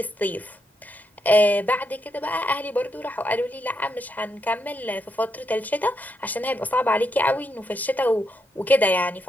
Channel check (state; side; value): normal; both; correlation 0.80